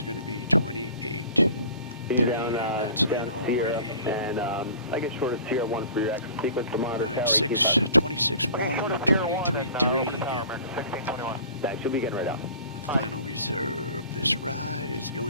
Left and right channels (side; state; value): both; inverted; correlation -0.44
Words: going to be 28.3, and that's in already. And I guess short of CR1 for your exit sequence to monitor. Alright, 26.1, 123.3, yep. That should be getting right out. Final reserve. This ride is